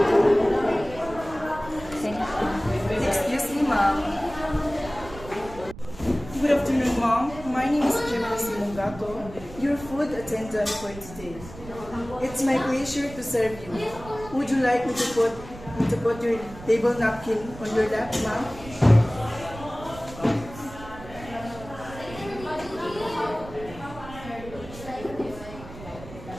Excuse me, ma'am. Good afternoon, ma'am. My name is Gemma Simongato, your food attendant for today. It's my pleasure to serve you. Would you like me to put your table napkin on your lap, ma'am?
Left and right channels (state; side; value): noise; right; rumble, 15 dB below the sound